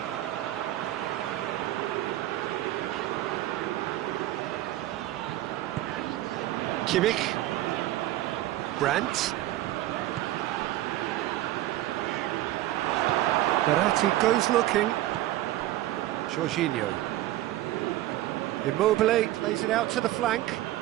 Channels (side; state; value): left; quieter; 15.2 dB